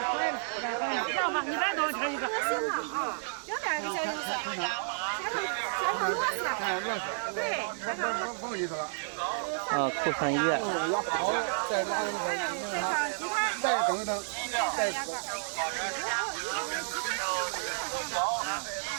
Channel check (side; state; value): left; silent; digital silence